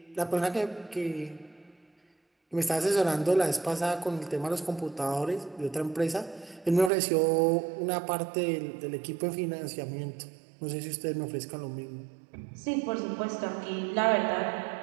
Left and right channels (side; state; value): left; drops out; at 6.9 s